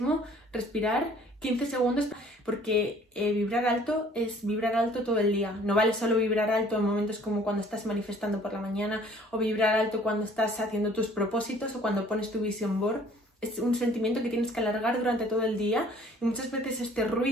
respirar 15 segundos porque vibrar alto es vibrar alto todo el día. No vale solo vibrar alto en momentos como cuando estás manifestando por la mañana o vibrar alto cuando estás haciendo tus propósitos o cuando pones tu vision board. Es un sentimiento que tienes que alargar durante todo el día y muchas veces este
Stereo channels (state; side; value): normal; both; correlation 0.55